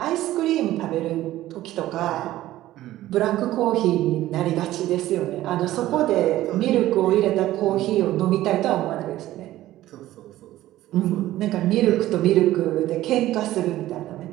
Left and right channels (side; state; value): left; quieter; 15.0 dB